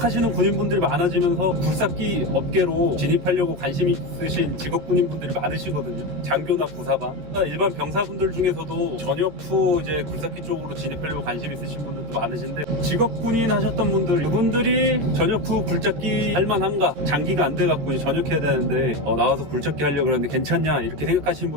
군인분들이 많아지면서 굴삭기 업계로 진입하려고 관심 있으신 직업 군인분들이 많으시거든요. 장교나 부사관. 일반 병사분들 중에서도 전역 후 이제 굴삭기 쪽으로 진입하려고 관심 있으신 분들도 많으신데, 직업 군인 하셨던 분들, 그분들이 전역 후 굴삭기 할만한가? 장기가 안 돼갖고 이제 전역해야 되는데 나와서 굴삭기 하려고 그러는데 괜찮냐? 이렇게 생각하시는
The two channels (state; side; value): late; left; 14 ms